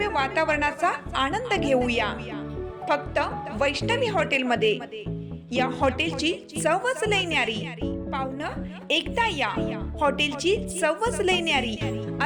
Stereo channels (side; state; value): both; identical; correlation 1.00